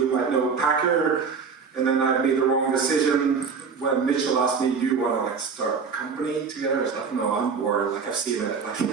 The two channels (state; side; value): quieter; left; 5.6 dB